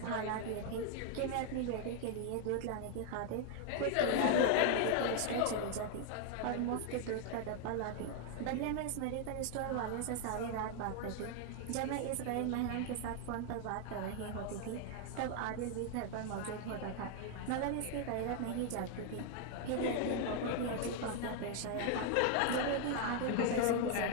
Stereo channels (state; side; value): different; both; correlation 0.00